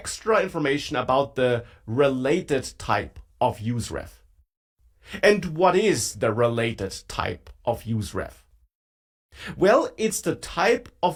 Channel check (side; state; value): both; identical; correlation 1.00